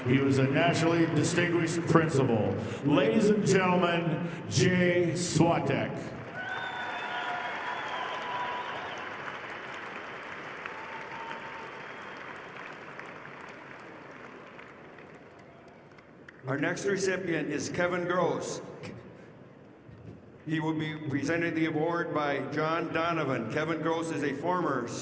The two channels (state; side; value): identical; both; correlation 1.00